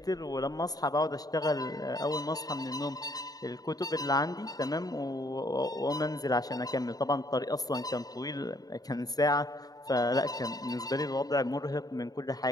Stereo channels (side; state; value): right; late; 0.18 ms